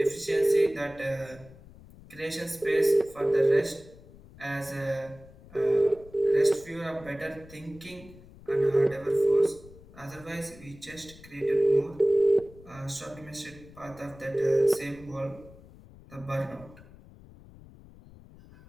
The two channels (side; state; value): left; noise; rumble, 21 dB below the sound